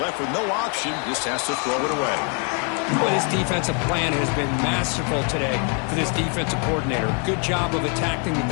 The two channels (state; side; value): quieter; right; 38.7 dB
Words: with no option, just has to throw it away. Well, this defensive plan has been masterful today for this defensive coordinator. Good job of attacking the